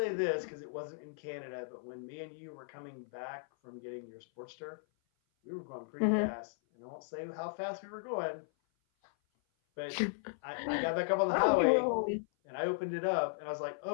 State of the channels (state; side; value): silent; right; 54 dB below the other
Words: this because it wasn't in Canada, but when me and you were coming back from getting your Sportster, we were going pretty Hmm. fast. And I won't say how fast we were going, but I got back up on the Oh, you were highway home. and I opened it up and I was like,